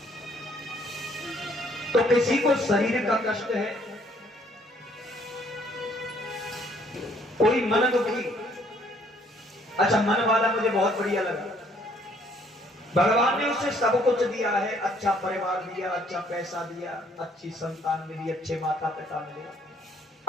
तो किसी को शरीर का कष्ट है, कोई मन दुखी। अच्छा, मन वाला मुझे बहुत बढ़िया लगा। भगवान ने उसे सब कुछ दिया है, अच्छा परिवार दिया, अच्छा पैसा दिया, अच्छी संतान मिली, अच्छे माता पिता मिले,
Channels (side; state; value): both; normal; correlation 0.64